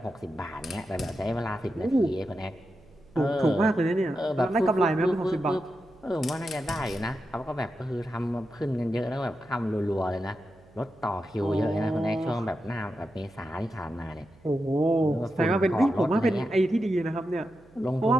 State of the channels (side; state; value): right; noise; hum, 27 dB below the sound